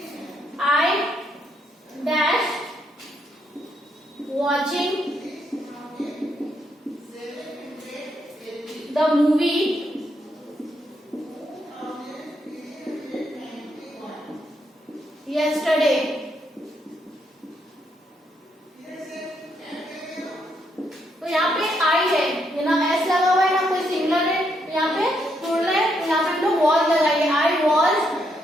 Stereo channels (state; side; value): normal; both; correlation 0.77